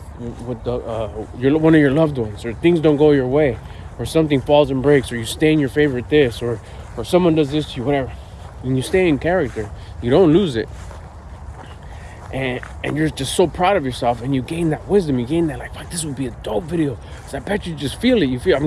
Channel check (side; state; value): both; identical; correlation 1.00